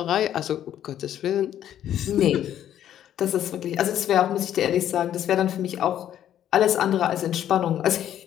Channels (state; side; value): quieter; right; 10.9 dB